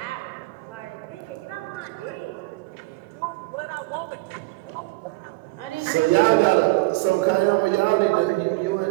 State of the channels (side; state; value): left; quieter; 22.7 dB